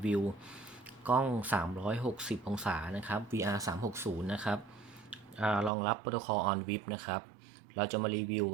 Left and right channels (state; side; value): drops out; left; at 5.7 s